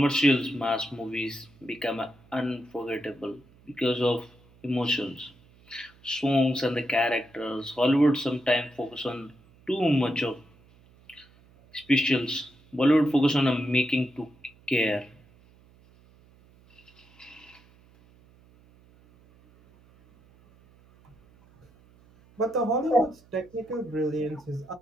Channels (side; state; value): right; noise; hum, 28 dB below the sound